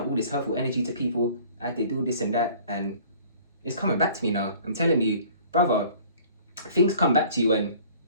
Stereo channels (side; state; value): both; inverted; correlation -0.51